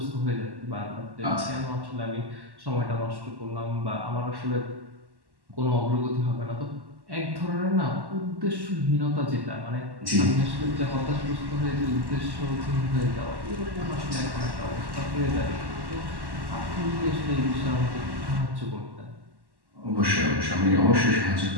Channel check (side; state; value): left; late; 1.1 ms